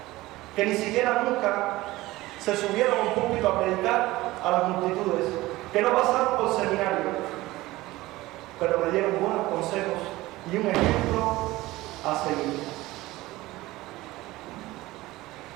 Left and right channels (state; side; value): quieter; left; 18.6 dB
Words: que ni siquiera nunca se subieron a un púlpito a predicar a las multitudes, que no pasaron por seminario, pero me dieron buenos consejos y un ejemplo a seguir.